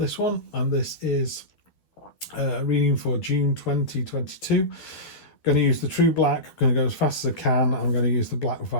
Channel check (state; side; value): late; right; 12 ms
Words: one, and this is reading for June 2022. Going to use the True Black. I'm going to go as fast as I can. I'm going to use the Black